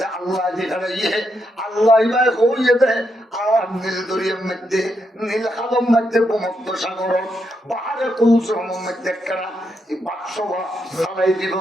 আল্লাহ যেখানে ইয়ে আল্লাহ ভাই হইয়ে দেয়। আর নীল দরিয়ার মধ্যে নীল হাদম মধ্যে ভূমধ্য সাগর পাহাড়ে কৌশলের মধ্যে কেনা বাক্স চালাই দিব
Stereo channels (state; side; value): normal; both; correlation 0.81